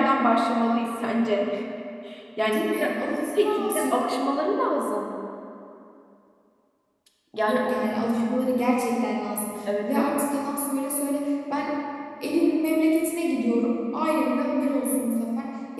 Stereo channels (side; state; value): both; identical; correlation 1.00